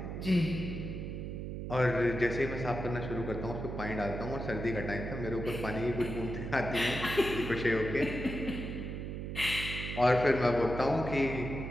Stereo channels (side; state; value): right; noise; hum, 5 dB below the sound